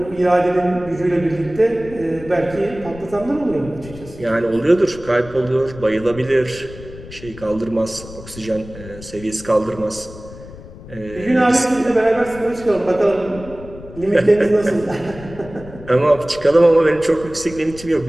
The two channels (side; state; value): left; noise; rumble, 16 dB below the sound